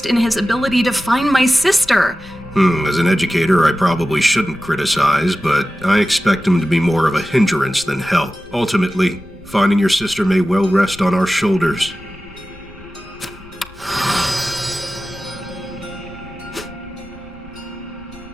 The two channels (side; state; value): left; noise; rumble, 22 dB below the sound